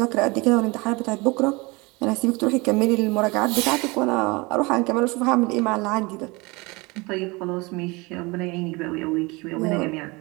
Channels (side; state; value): left; quieter; 25.4 dB